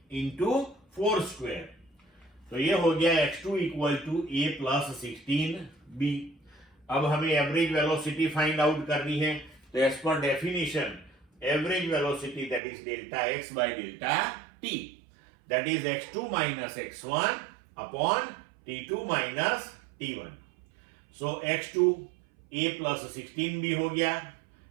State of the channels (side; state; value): left; drops out; at 12.6 s